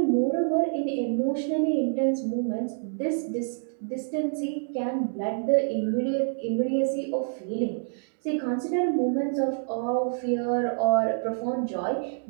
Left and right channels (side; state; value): left; silent; digital silence